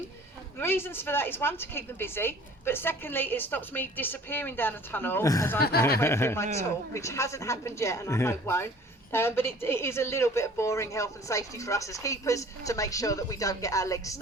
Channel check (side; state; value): both; normal; correlation 0.49